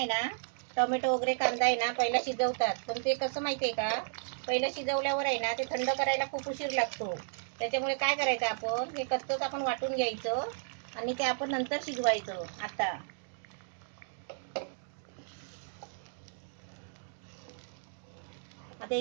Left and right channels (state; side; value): silent; left; digital silence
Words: ना टोमॅटो वगैरे कांदा आहे ना पहिला शिजवतात, पण ते कसं माहितीये का पहिलं शिजवल्यावर आहे ना ते थंड करायला खूप उशीर लागतो. त्याच्यामुळे काय करायचं, आपण हे कच्चंच आपण वाटून घ्यायचं आणि ते आपण नंतर शिजवायचं. आता